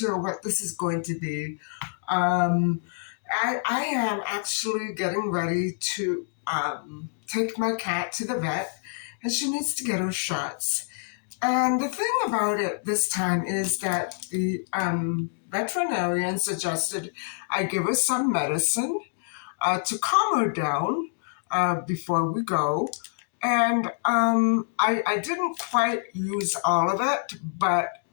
what this is going to be. I am actually getting ready to take my cat to the vet, and she needs to get her shots. And the thing about it this time is that the veterinarian suggested I give her some medicine to calm her down before we go. And I didn't quite use all of it, but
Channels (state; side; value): silent; right; digital silence